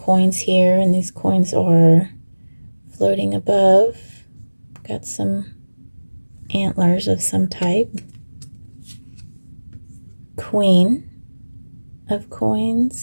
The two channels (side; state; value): both; inverted; correlation -1.00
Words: here, and these coins are floating above. Got some antlers of some type. Queen of